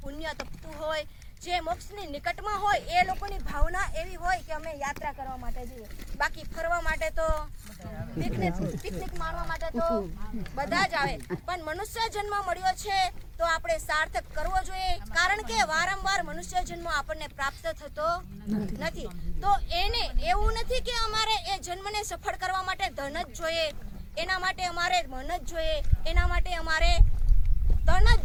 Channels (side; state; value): both; identical; correlation 1.00